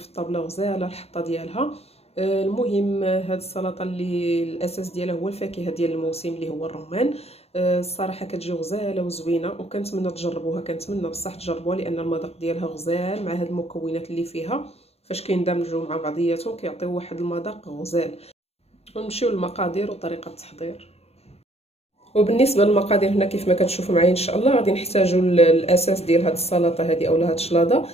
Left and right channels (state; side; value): late; right; 0.30 ms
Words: الطابله غزاله الحطه ديالها. المهم هاد السلطه اللي الاساس ديالها هو الفاكهه ديال الموسم اللي هو الرمان. الصراحه كتجي غزاله وزوينه وكنتمنى تجربوها، كنتمنى بصح تجربوها لان المذاق ديالها غزال مع هاد المكونات اللي فيها. فاش كيندمجوا مع بعضياتهم كيعطيو واحد المذاق غزال. ونمشيو للمقادير وطريقه التحضير. وبالنسبه للمقادير هنا كيف ما كتشوفوا معايا ان شاء الله غادي نحتاجوا الاساس ديال هاد السلطه هذه اولا هاد الشلاضه.